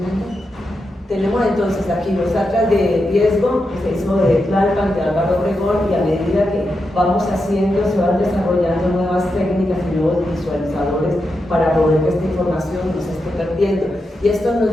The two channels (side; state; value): both; normal; correlation 0.87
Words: Tenemos entonces aquí los atlas de riesgo que se hizo de Tlalpan, de Álvaro Obregón, y a medida que vamos haciendo, se van desarrollando nuevas técnicas y nuevos visualizadores para poder que esta información no se esté perdiendo. Y esto nos